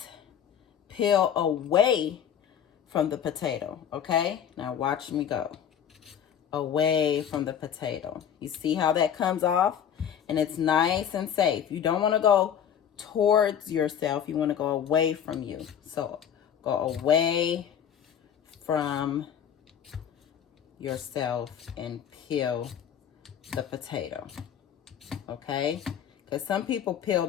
peel away from the potato, okay? Now watch me go. Away from the potato. You see how that comes off? And it's nice and safe. You don't want to go towards yourself. You want to go away from you. So go away from yourself and peel the potato, okay? Because some people peel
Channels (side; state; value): right; quieter; 8.8 dB